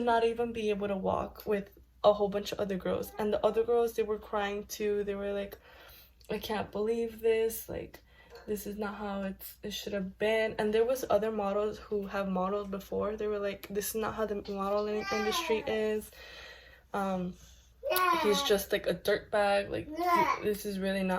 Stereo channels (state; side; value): identical; both; correlation 1.00